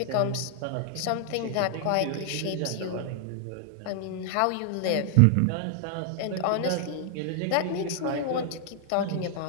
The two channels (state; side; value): different; both; correlation 0.00